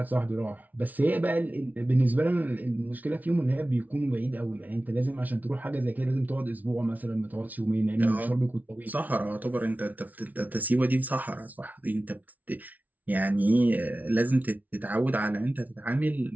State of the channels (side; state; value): left; late; 0.075 ms